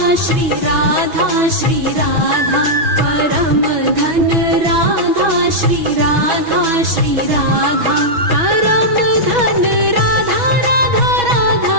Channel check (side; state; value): left; late; 6.2 ms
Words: श्री राधा श्री राधा परम धन राधा श्री राधा श्री राधा परम धन राधा राधा राधा